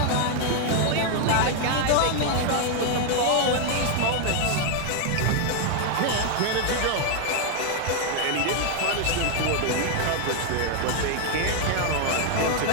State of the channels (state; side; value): different; both; correlation 0.00